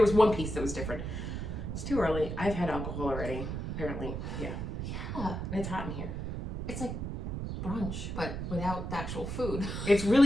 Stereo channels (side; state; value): right; noise; rumble, 4 dB below the sound